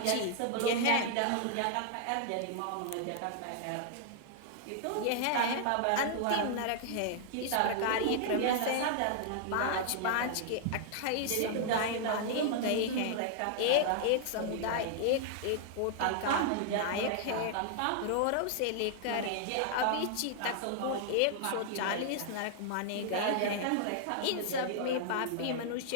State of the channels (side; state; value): both; different; correlation -0.01